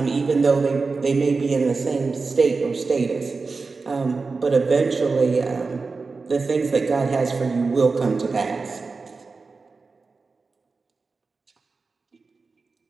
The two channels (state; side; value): quieter; left; 4.2 dB